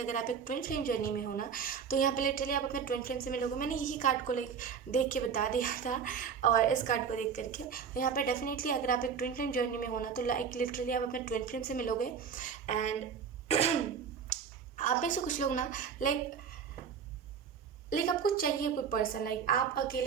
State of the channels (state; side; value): quieter; left; 6.8 dB